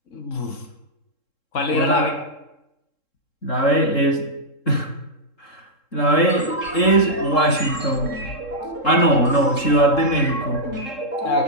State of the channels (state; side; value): late; right; 3.7 ms